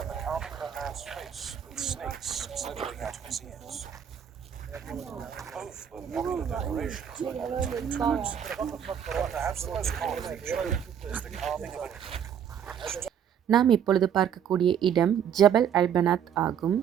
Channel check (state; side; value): quieter; left; 8.7 dB